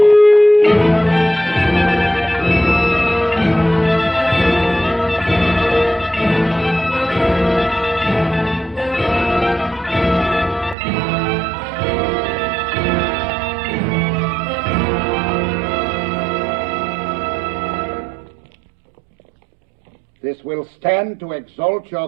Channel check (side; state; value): left; drops out; at 10.8 s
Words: This will stand to exalt your